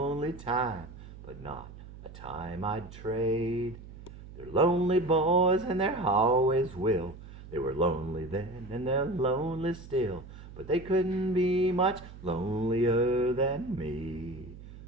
time, but not a time I'd trade. They're lonely boys and they always will. They were lonely then and they're lonely still, but they couldn't be much lonelier than me.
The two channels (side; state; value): right; noise; hum, 16 dB below the sound